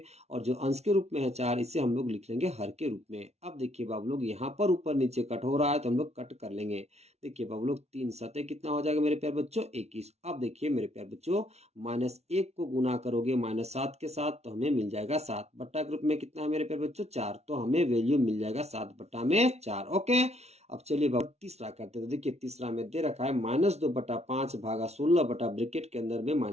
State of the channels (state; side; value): late; left; 0.31 ms